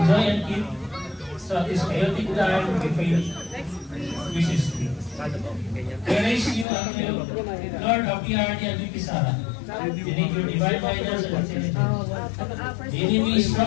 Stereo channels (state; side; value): drops out; right; at 6.7 s